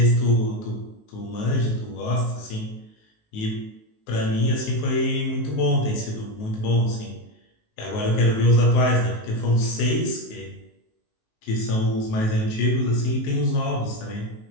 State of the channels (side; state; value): right; late; 19 ms